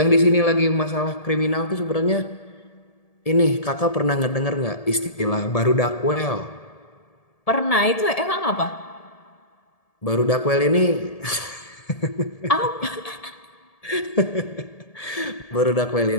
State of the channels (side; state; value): right; late; 1.7 ms